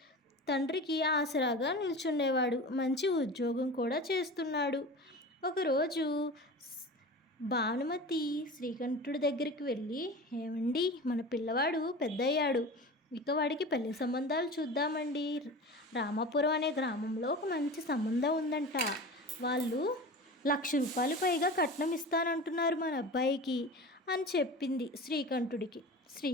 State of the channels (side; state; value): both; normal; correlation 0.33